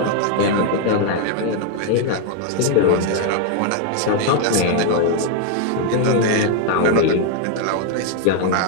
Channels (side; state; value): both; different; correlation 0.01